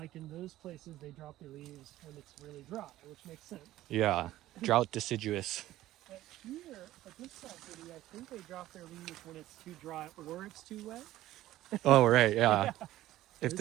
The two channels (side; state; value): left; quieter; 14.9 dB